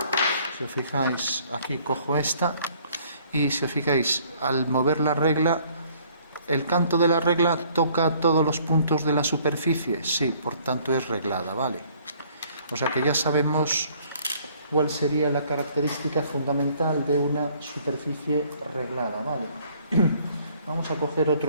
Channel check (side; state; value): both; inverted; correlation -0.60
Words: Si os fijáis, aquí cojo esta y si os fijáis, al mover la regla, el canto de la regla toca todos los puntos de la superficie. Sí, por tanto es reglada, ¿vale? O sea que ya sabemos cuál sería la característica fundamental de una superficie reglada, ¿vale? Vamos a coger